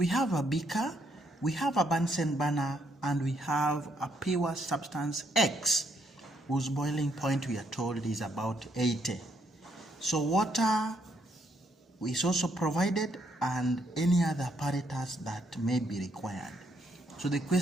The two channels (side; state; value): both; normal; correlation 0.73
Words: have a beaker, we have a Bunsen burner, and we have a pure substance X, whose boiling point we are told is about 80. So water is also provided, and any other apparatus that may be required. So the